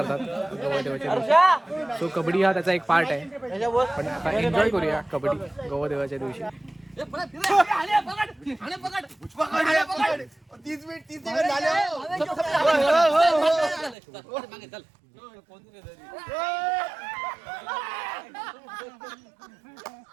गवळदेवाच्या दिवशी. सो कबड्डी हा त्याचा एक पार्ट आहे, पण आता एन्जॉय करूया कबड्डी गवळदेवाच्या दिवशी.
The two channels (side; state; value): left; drops out; at 14.0 s